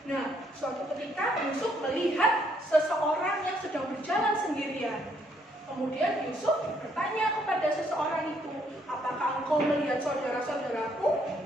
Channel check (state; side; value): normal; both; correlation 0.70